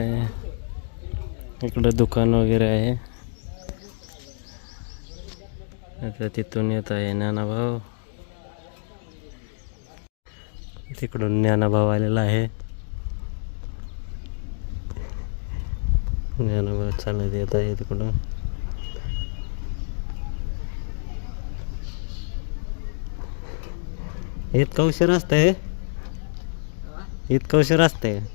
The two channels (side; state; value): right; silent; digital silence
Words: इकडे दुकान वगैरे आहे. आता तिथून येत आहे ज्ञानाभाऊ, तिकडून ज्ञानाभाऊ आलेला आहे. ज्ञानाभाऊ चालत येत आहे तिकडून. इतका उशीर असतंय, इतका उशीर असतंय.